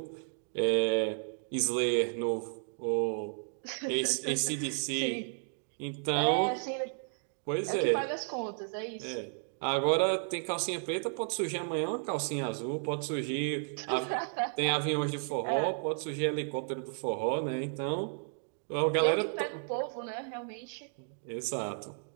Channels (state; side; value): silent; left; digital silence